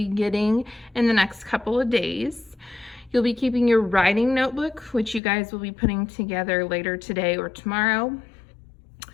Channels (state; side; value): drops out; right; at 5.2 s